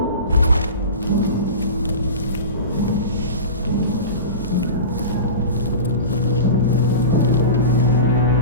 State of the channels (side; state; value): both; inverted; correlation -0.32